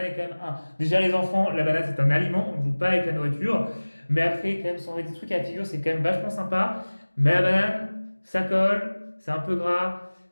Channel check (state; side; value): inverted; both; correlation -1.00